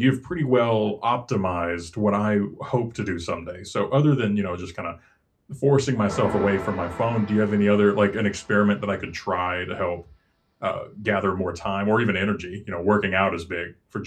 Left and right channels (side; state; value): both; identical; correlation 1.00